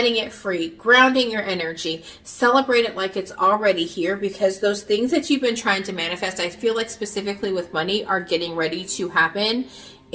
it free, grounding your energy, celebrate it like it's already here, because those things that you've been trying to manifest, I feel like specifically with money, are getting ready to happen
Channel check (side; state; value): both; identical; correlation 1.00